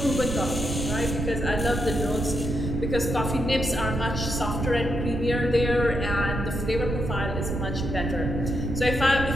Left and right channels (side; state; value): right; noise; rumble, 3 dB below the sound